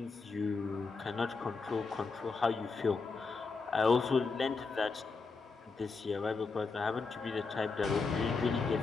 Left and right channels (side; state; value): right; quieter; 4.4 dB